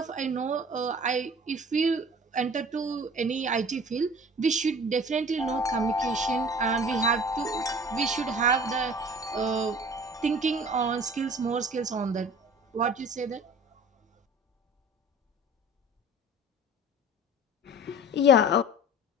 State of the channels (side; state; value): both; normal; correlation 0.44